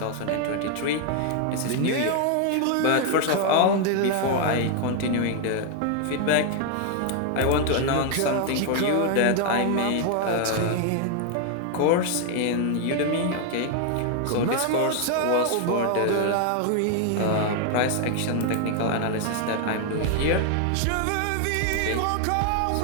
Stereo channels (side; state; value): both; different; correlation 0.00